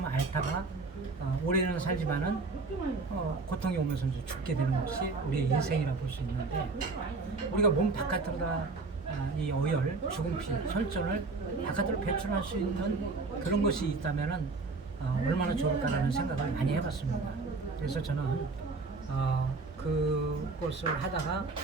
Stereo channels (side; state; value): left; quieter; 3.9 dB